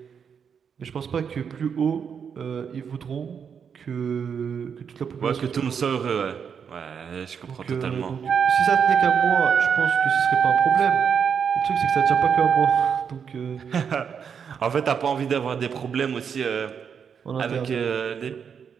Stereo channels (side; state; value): left; quieter; 7.0 dB